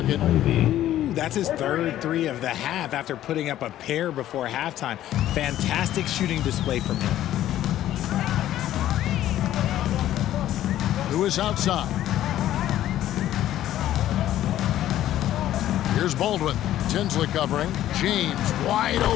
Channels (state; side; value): quieter; right; 12.9 dB